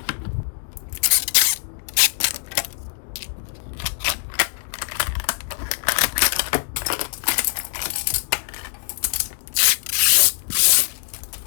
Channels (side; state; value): right; silent; digital silence